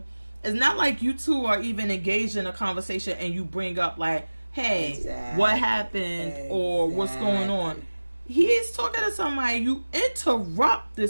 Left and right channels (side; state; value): both; inverted; correlation -1.00